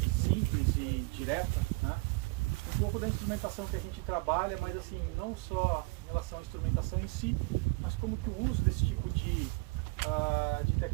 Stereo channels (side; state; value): left; quieter; 28.1 dB